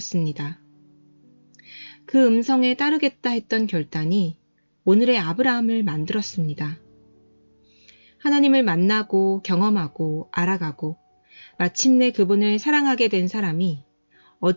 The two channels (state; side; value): inverted; both; correlation -1.00